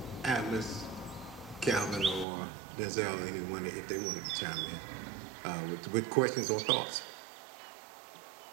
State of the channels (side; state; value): left; drops out; at 2.2 s